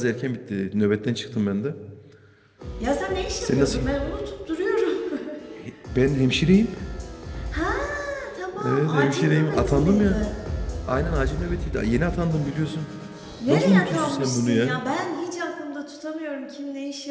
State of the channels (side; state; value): both; identical; correlation 1.00